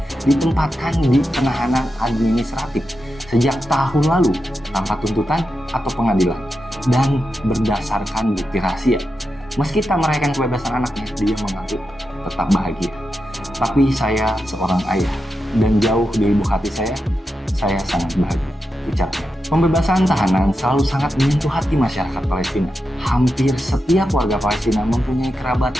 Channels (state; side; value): normal; both; correlation 0.88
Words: ditempatkan di penahanan administratif sejak tahun lalu tanpa tuntutan atau pengadilan dan berdasarkan bukti rahasia. Meski tak merayakan kebebasan anaknya, dia mengaku tetap bahagia. Tapi saya seorang ayah dan jauh di lubuk hati saya sangat bahagia, ucapnya. Pembebasan tahanan selalu sangat menyentuh hati masyarakat Palestina. Hampir setiap warga Palestina mempunyai kerabat